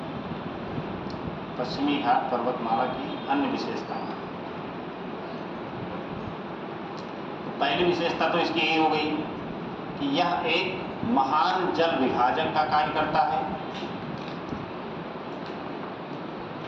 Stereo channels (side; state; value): both; identical; correlation 1.00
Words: पश्चिमी घाट पर्वतमाला की अन्य विशेषताएं। तो पहली विशेषता तो इसकी यही हो गई कि यह एक महान जल विभाजक का कार्य करता है।